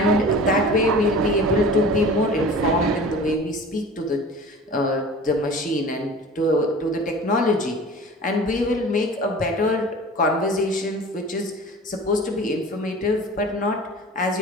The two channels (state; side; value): normal; both; correlation 0.40